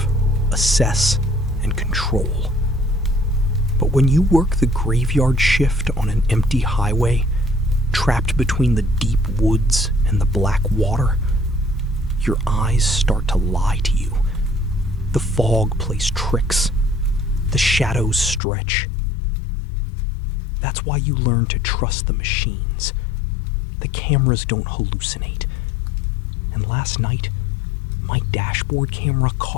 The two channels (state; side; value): drops out; right; at 18.4 s